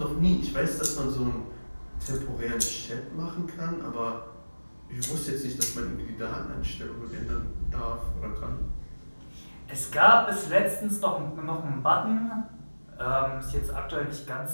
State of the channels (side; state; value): both; inverted; correlation -1.00